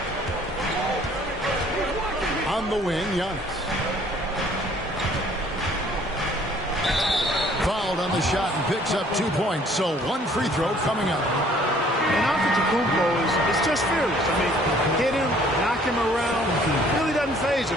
On the wing, Giannis. Fouled on the shot and picks up 2 points. So 1 free throw coming up. And Antetokounmpo is just fearless. I mean, hit him, knock him around. Really doesn't faze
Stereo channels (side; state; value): both; normal; correlation 0.58